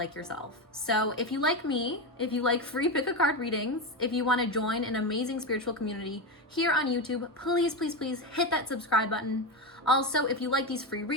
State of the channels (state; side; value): normal; both; correlation 0.14